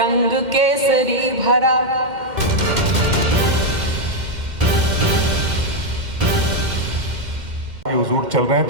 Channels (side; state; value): left; late; 2.1 ms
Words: केसरी भरा, हुजूर चल रहे हैं